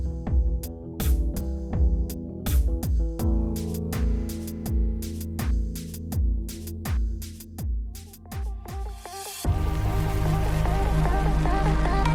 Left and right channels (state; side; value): identical; both; correlation 1.00